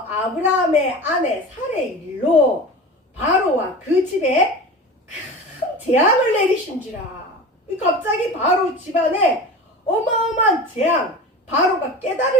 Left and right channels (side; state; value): both; normal; correlation 0.33